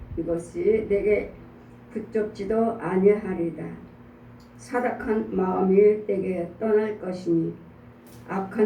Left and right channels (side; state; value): both; identical; correlation 1.00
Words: 붙잡지도 아니하리이다. 사악한 마음이 내게 떠날 것이니